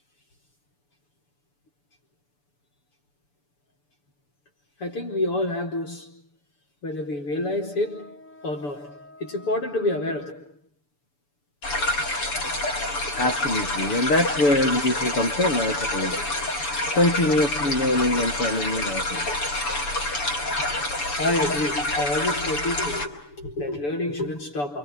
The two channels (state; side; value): late; right; 6.9 ms